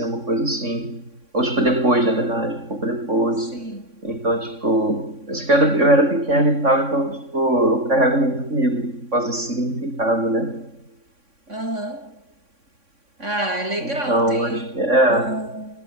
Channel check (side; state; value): left; late; 3.6 ms